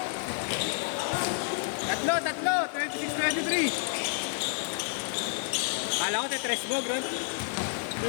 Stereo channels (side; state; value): right; silent; 58 dB below the other